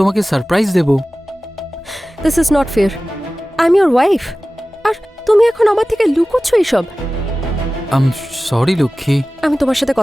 সারপ্রাইজ দেব। This is not fair. I am your wife, আর তুমি এখন আমার থেকে লুকোচ্ছ এইসব। সরি লক্ষ্মী। আমি তোমার সাথে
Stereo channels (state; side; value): normal; both; correlation 0.97